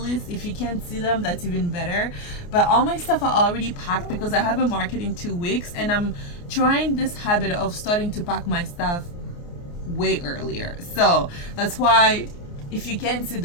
If you can't see them, that's even better. But all my stuff are already packed because I have a market in 2 weeks, and I'm trying this habit of starting to pack my stuff way earlier. So that's why if you can't see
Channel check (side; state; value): right; late; 29 ms